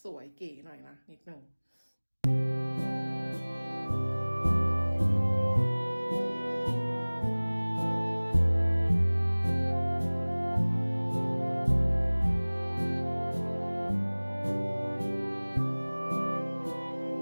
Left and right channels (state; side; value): inverted; both; correlation -1.00